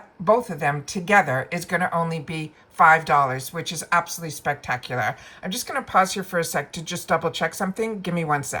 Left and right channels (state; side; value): identical; both; correlation 1.00